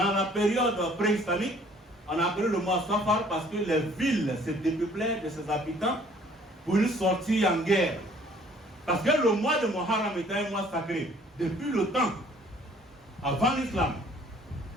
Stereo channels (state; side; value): normal; both; correlation 0.57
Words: la période pré-islamique, on a appelé le mois Safar parce que les villes se dépeuplaient de ses habitants pour une sortie en guerre. Parce que le mois de Muharram était un mois sacré. Depuis le temps, avant l'islam,